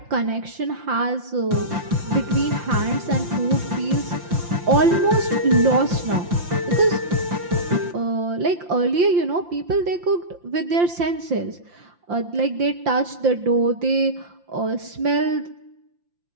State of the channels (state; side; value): late; left; 5.8 ms